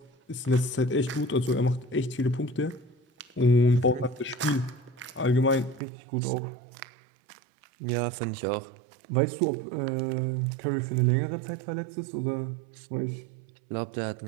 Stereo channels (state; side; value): drops out; left; at 5.8 s